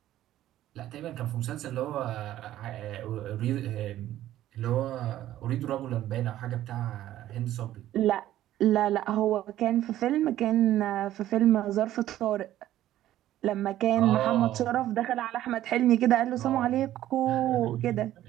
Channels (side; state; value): left; quieter; 13.3 dB